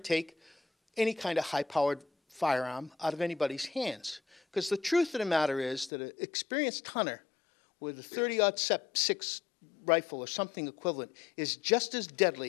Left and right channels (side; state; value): right; drops out; at 5.9 s